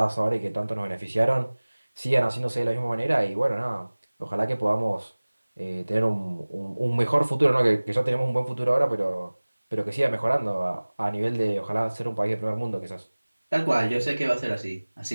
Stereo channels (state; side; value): inverted; both; correlation -1.00